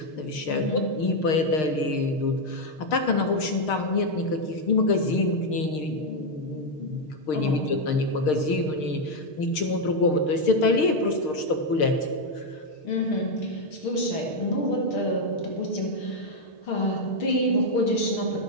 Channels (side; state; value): right; late; 6.5 ms